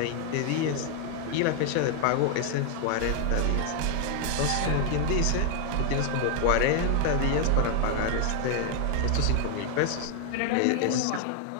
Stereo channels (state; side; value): different; both; correlation 0.00